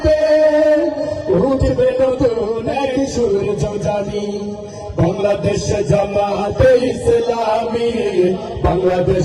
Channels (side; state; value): both; identical; correlation 1.00